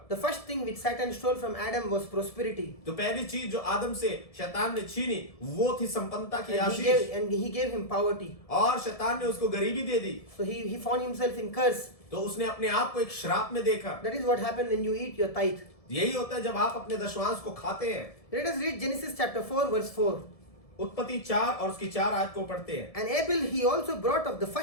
The first thing which Satan stole from Adam was prosperity. तो पहली चीज जो आदम से शैतान ने छीनी वो थी संपन्नता की And he Ashish, gave him poverty. और शैतान ने उसको गरीबी दे दी। So he found himself in curse. तो उसने अपने आप को एक श्राप में देखा। That is what happened when you eat your tithe. यही होता है जब आप अपने दशवांश को खाते हैं। Let us read Genesis chapter 4 verse 4. उत्पत्ति 4 और उसकी 4 आयत को पढ़ते हैं। And Abel he also brought of the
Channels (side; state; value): right; late; 1.7 ms